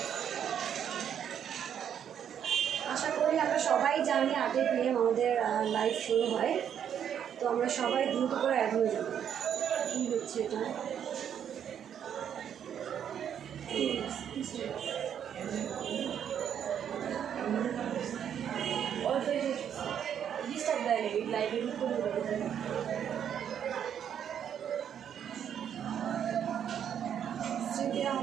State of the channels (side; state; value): left; quieter; 8.9 dB